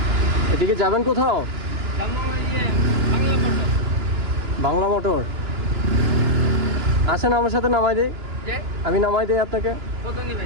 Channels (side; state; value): left; late; 2.9 ms